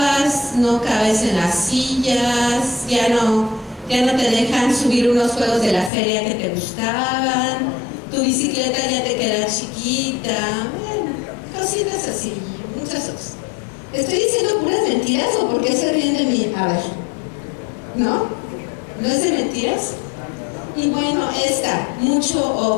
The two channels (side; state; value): right; drops out; at 5.9 s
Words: no cabes en las sillas, ya no te dejan subir unos juegos de la feria que te gustaban, tu bicicleta ya te queda chiquita. Cositas así, muchas cosas. ¿Estoy diciendo puras mentiras o por qué se ríen de mí? A ver, ¿no? ¿No es de mentiras? Y bueno, mucho